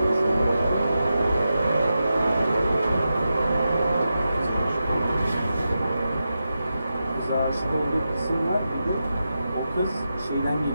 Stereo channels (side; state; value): both; inverted; correlation -0.90